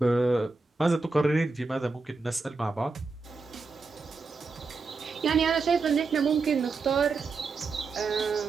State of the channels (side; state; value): left; quieter; 4.1 dB